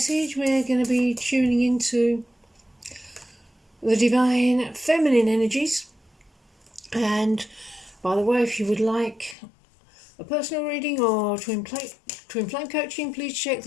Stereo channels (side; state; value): right; drops out; at 9.3 s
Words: we're going to be tuning into the divine feminine energies. And by the way, if you would like a personal reading or twin flame coaching, please check